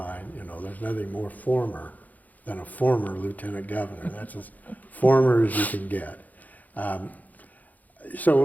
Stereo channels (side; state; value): right; late; 0.080 ms